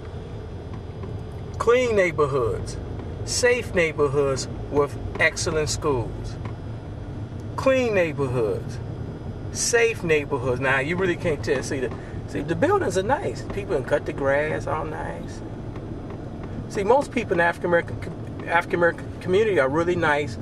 Clean neighborhoods. Safe neighborhoods with excellent schools. Clean neighborhoods. Safe neighborhoods. Now you really can't tell. See the buildings are nice. People can cut the grass, all nice. See, most people in the African American community are really nice,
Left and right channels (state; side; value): identical; both; correlation 1.00